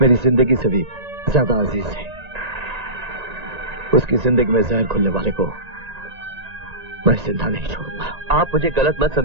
मेरी जिंदगी से भी ज्यादा अजीज है। उसकी जिंदगी में जहर घुलने वाले को मैं जिंदा नहीं छोड़ूंगा। आप मुझे गलत मत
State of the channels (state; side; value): late; left; 1.9 ms